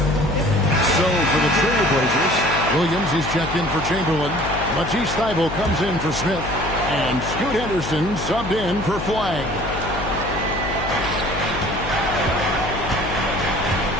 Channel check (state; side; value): noise; left; hum, 7 dB below the sound